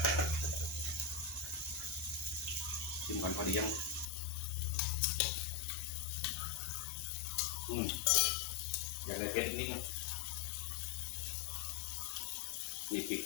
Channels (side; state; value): right; drops out; at 4.0 s